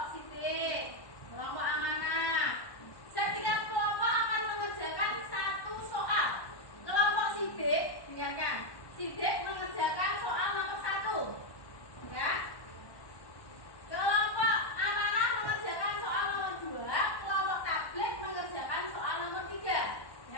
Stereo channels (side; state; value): right; late; 1.1 ms